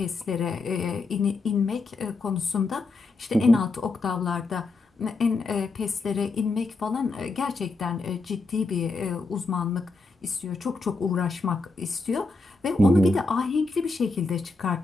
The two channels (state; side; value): quieter; right; 3.6 dB